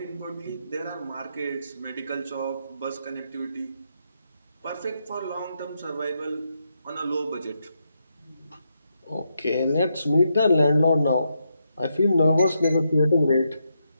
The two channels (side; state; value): both; inverted; correlation -0.82